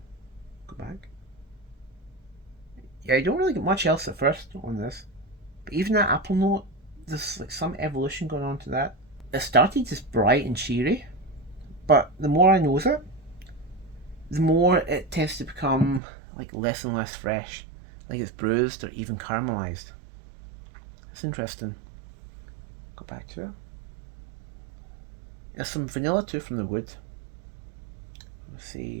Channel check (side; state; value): left; drops out; at 16.0 s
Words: go back. Yeah, you don't really get much else at first on this. But even that apple note, there's like some evolution going on to that. It started just bright and cheery, but the more I nose it, the more it tends to become like less and less fresh, like it's bruised or even caramelized. It's interesting. Go back to it. There's some vanilla too from the wood. Let's